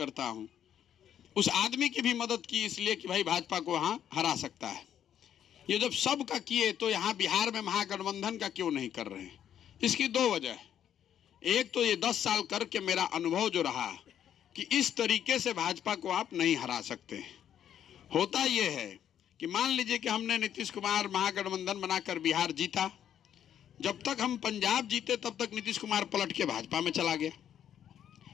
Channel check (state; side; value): quieter; right; 9.8 dB